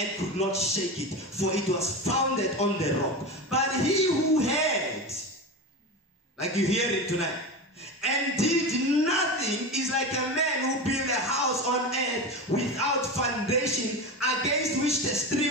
could not shake it, for it was founded on the rock. But he who heard, like you hear it tonight, and did nothing is like a man who built a house on earth without foundation, against which the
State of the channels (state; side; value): normal; both; correlation 0.23